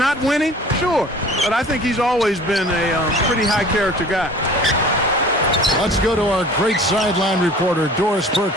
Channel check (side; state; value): both; normal; correlation 0.45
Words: winning? Sure. But I think he's always been a pretty high-character guy. Let's go to our great sideline reporter, Doris Burke,